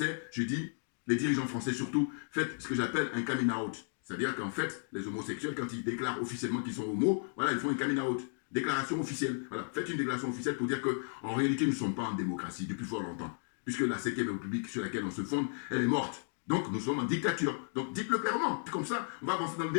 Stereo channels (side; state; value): right; silent; digital silence